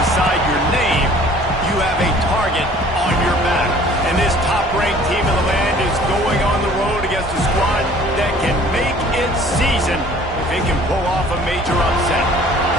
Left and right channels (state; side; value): normal; both; correlation 0.52